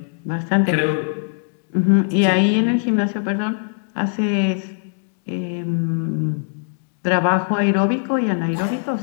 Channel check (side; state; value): right; silent; digital silence